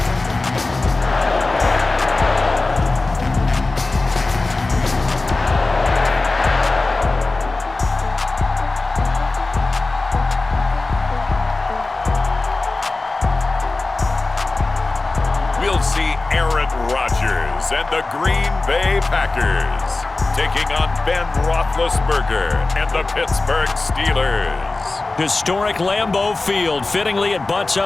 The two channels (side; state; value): right; quieter; 3.3 dB